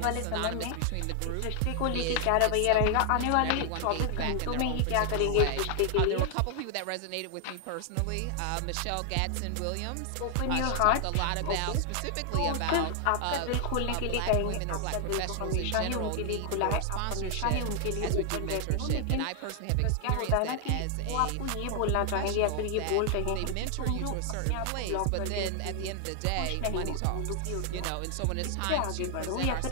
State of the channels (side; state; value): both; different; correlation 0.00